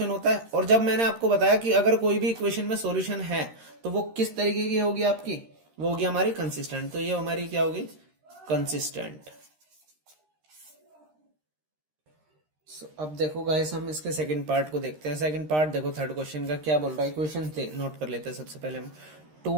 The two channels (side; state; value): left; late; 13 ms